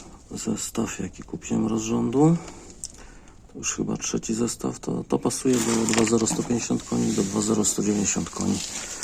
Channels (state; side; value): identical; both; correlation 1.00